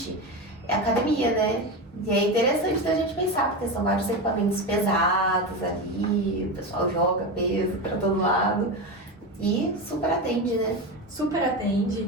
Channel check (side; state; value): both; normal; correlation 0.19